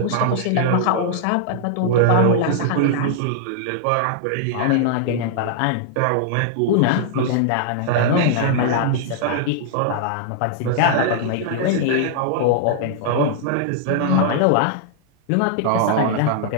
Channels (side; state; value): both; different; correlation -0.01